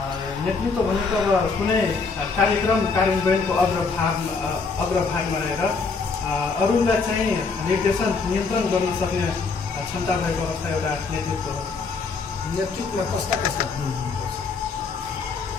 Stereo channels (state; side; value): quieter; right; 4.6 dB